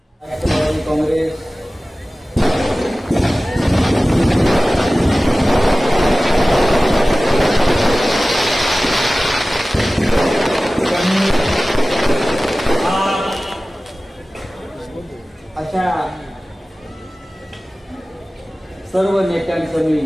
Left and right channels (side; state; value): both; normal; correlation 0.97